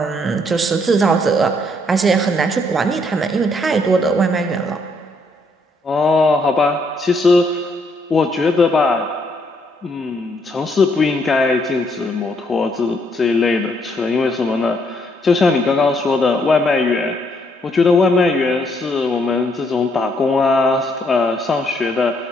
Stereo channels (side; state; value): both; normal; correlation 0.71